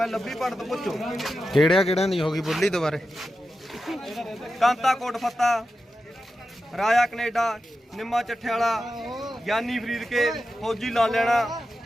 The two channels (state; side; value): normal; both; correlation 0.91